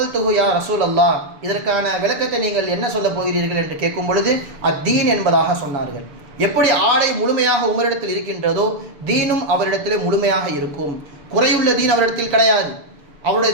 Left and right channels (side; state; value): left; late; 6.9 ms